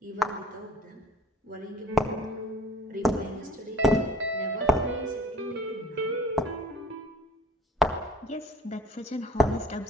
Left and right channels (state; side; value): normal; both; correlation 0.51